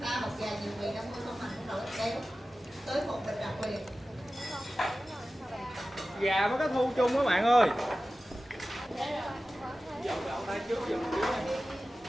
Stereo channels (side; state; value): both; normal; correlation 0.95